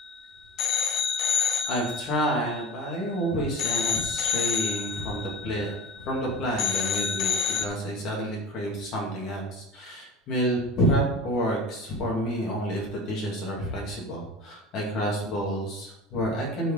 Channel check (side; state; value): both; normal; correlation 0.34